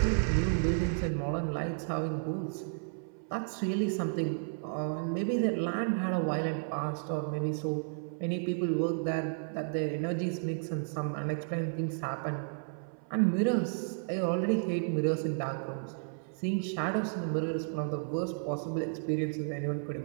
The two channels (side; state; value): left; silent; 56 dB below the other